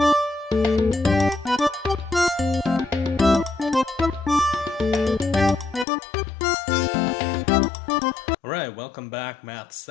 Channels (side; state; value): right; drops out; at 5.9 s